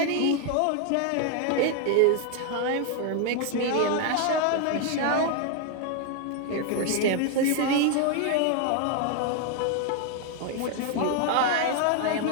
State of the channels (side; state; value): both; different; correlation 0.01